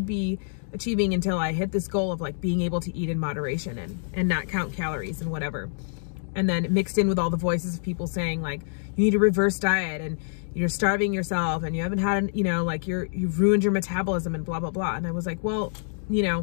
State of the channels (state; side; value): silent; right; digital silence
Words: be achieving until I hit this goal of like being able to eat in moderation and not count calories and whatever. And then mixed in with all the voices of people saying like, you need to reverse diet and you're starving yourself and you haven't had, like you've ruined your metabolism and blah, blah, blah. And I was like, well,